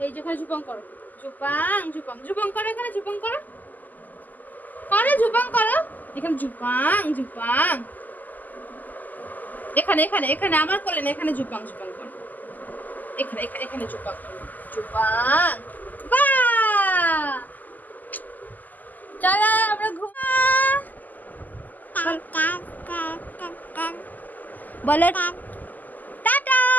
এই যে এখানে ঝুপাং করো, ঝুপাং ঝুপাং ঝুপাং করো, এখানে ঝুপাং করো, করে ঝুপাং করো, এখানে ঝুপাং ঝুপাং, এখানে এখানে এখানে আমার কোলে না, এখানে ঝুপাং ঝুপাং করো, এখানে এখানে এখানে ঝুপাং করো, ঝুপাং। বাহ, চলো আমরা ঘুমা। বলো টাটা,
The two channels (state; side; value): late; right; 0.083 ms